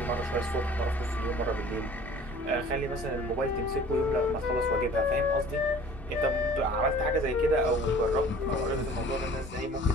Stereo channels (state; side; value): normal; both; correlation 0.48